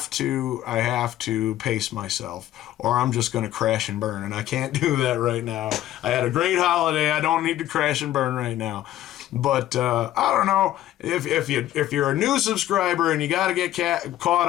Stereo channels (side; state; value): right; quieter; 13.4 dB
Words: to pace myself, or I'm just going to crash and burn, and I can't do that right now. I had a great holiday. I don't need to crash and burn right now. But I don't know, if you're a new subscriber and you got to get caught